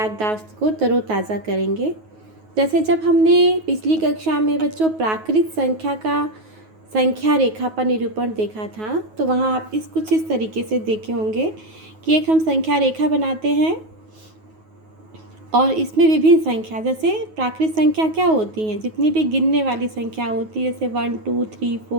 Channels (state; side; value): late; left; 9.4 ms